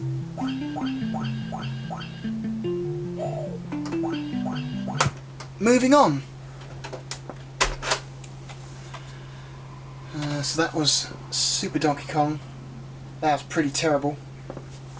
Moving on. So that was Super Donkey Kong. That was pretty terrible.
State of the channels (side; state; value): both; identical; correlation 1.00